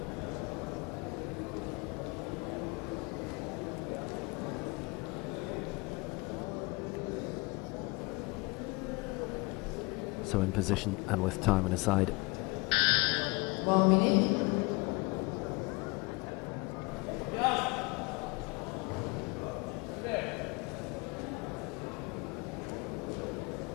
So in position and with time on his side. 1 minute.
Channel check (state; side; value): quieter; right; 27.2 dB